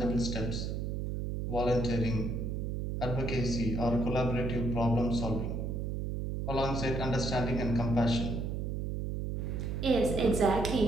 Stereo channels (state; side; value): noise; right; hum, 2 dB below the sound